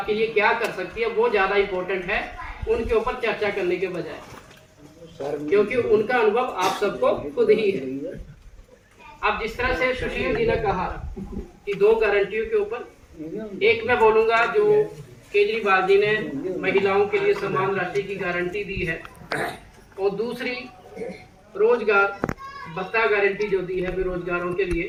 लिए क्या कर सकती है वो ज़्यादा इम्पोर्टेंट है उनके ऊपर चर्चा करने के बजाय, क्योंकि उनका अनुभव आप सबको खुद ही है। अब जिस तरह से सुशील जी ने कहा कि 2 गारंटियों के ऊपर, एक मैं बोलूँगा जो केजरीवाल जी ने महिलाओं के लिए समान राशि की गारंटी दी है, और दूसरी रोजगार भत्ता गारंटी जो दी है बेरोजगारों के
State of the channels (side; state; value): both; identical; correlation 1.00